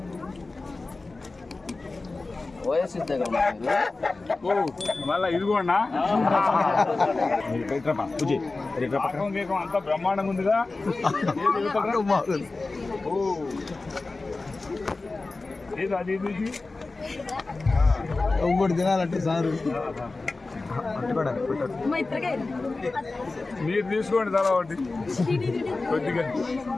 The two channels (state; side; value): quieter; right; 3.5 dB